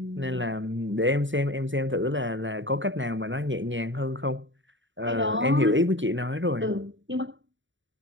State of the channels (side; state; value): left; late; 0.55 ms